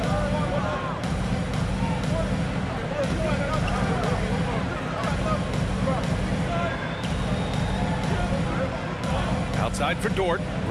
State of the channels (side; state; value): both; identical; correlation 1.00